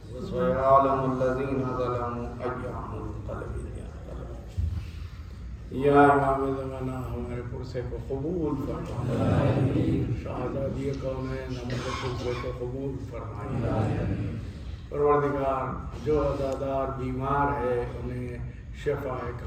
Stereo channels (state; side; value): identical; both; correlation 1.00